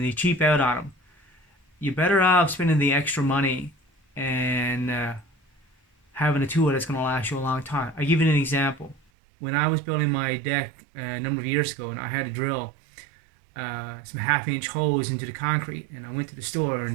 they cheap out on them. You're better off spending the extra money and having a tool that's going to last you a long time. I give you an example. When I was building my deck a number of years ago, and I had to drill some half-inch holes into the concrete, and I went to the store,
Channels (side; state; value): left; drops out; at 9.0 s